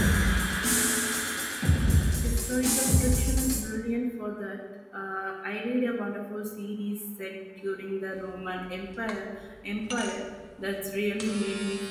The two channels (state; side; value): identical; both; correlation 1.00